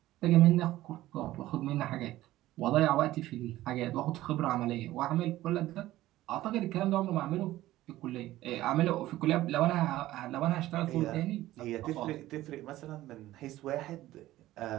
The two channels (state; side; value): quieter; left; 15.6 dB